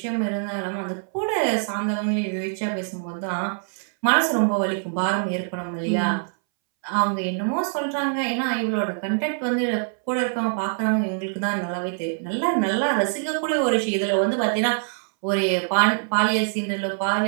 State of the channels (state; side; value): silent; left; 63 dB below the other